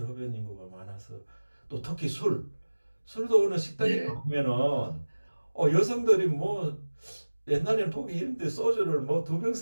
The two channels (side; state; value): both; inverted; correlation -1.00